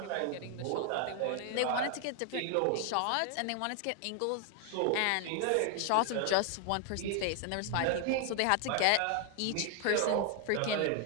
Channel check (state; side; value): different; both; correlation 0.01